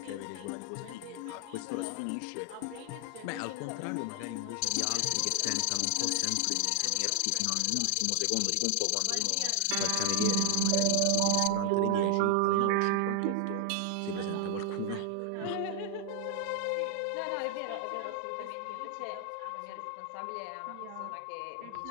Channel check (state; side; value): different; both; correlation 0.00